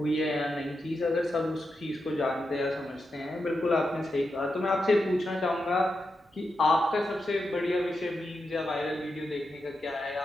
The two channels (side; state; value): both; normal; correlation 0.87